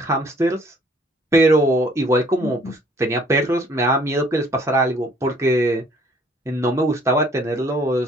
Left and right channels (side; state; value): both; normal; correlation 0.58